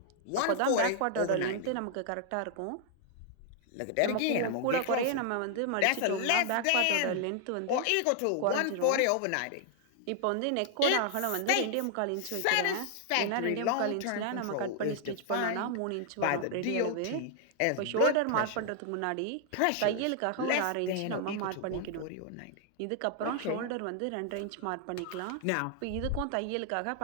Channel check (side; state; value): both; different; correlation 0.00